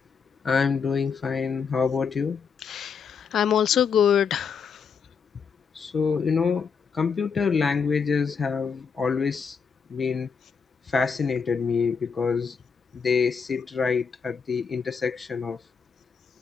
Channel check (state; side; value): quieter; right; 6.0 dB